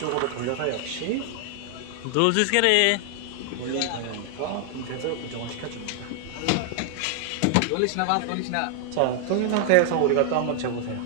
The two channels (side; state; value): both; different; correlation 0.00